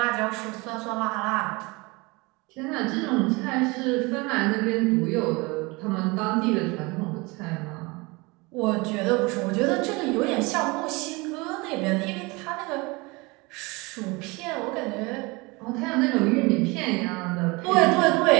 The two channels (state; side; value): quieter; left; 25.4 dB